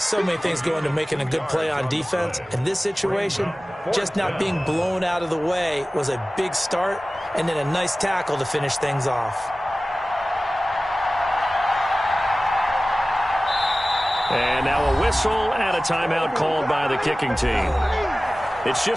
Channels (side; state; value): both; normal; correlation 0.97